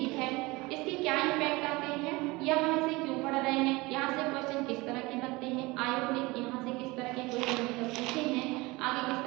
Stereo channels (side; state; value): left; quieter; 22.9 dB